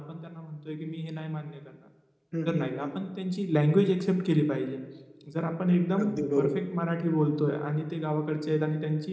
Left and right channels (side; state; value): both; identical; correlation 1.00